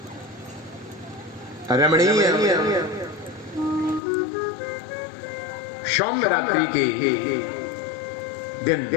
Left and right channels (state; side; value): drops out; right; at 4.0 s